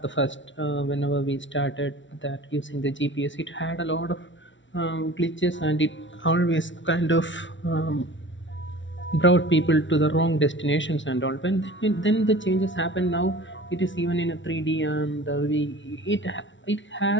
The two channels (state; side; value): late; right; 0.55 ms